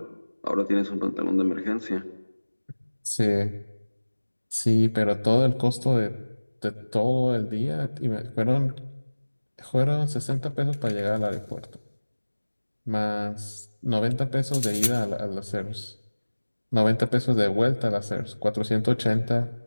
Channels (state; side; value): inverted; both; correlation -1.00